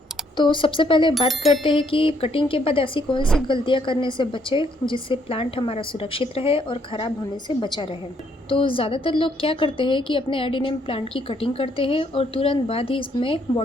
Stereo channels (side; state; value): both; normal; correlation 0.70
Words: तो सबसे पहले बात करते हैं कि कटिंग के बाद ऐसी कौन सी गलतियां करने से बचे जिससे प्लांट हमारा सुरक्षित रहे और ख़राब होने से बचा रहे। तो ज़्यादातर लोग क्या करते हैं कि अपने एडिनियम प्लांट की कटिंग करते हैं और तुरंत बाद ही इसमें